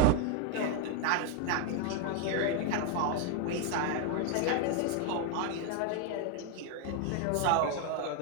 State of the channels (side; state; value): both; different; correlation 0.01